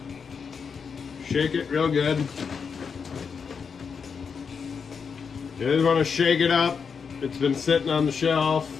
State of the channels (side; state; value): right; quieter; 6.0 dB